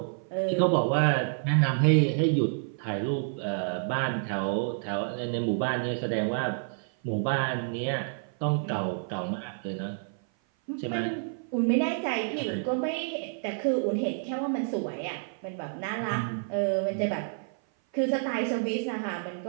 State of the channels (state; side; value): silent; left; 56 dB below the other